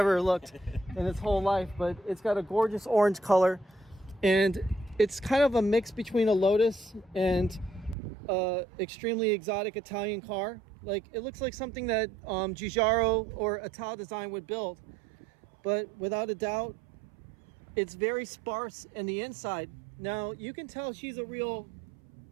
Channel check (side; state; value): left; drops out; at 8.0 s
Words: looked in its whole life. But it's got a gorgeous orange color, and it's kind of a mix between a Lotus and extremely exotic Italian car. Like, it looks like something that Giugiaro or Ital Design would build, but without a doubt it's very sparse in the inside. Now you can tell she's a real